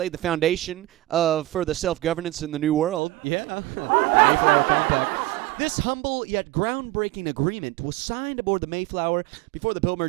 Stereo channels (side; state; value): left; drops out; at 3.0 s